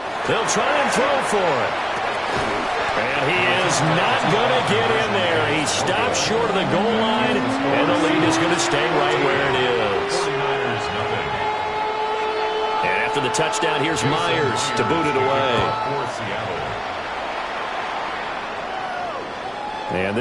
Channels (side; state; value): both; identical; correlation 1.00